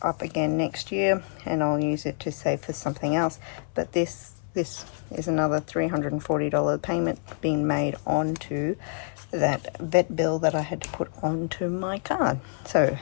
up again next year, and I'll use it to save for something else. But this is another $340 payment being made onto that vet bill that I had to put onto my card. So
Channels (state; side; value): silent; right; 56 dB below the other